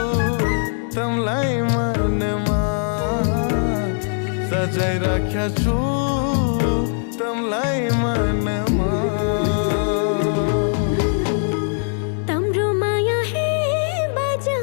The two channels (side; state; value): right; silent; 65 dB below the other